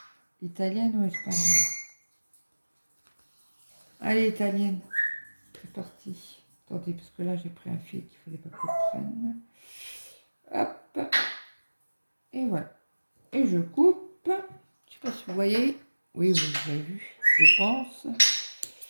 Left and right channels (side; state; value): both; inverted; correlation -1.00